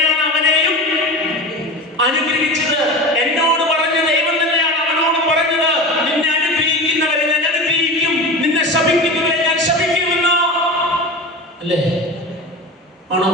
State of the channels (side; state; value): both; normal; correlation 0.30